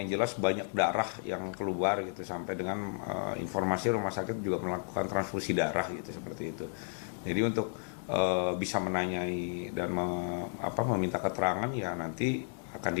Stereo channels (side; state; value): right; silent; 56 dB below the other